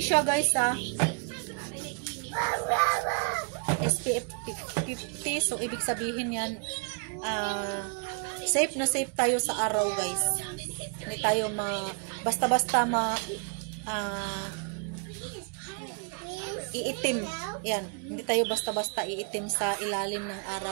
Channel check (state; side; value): quieter; left; 38.6 dB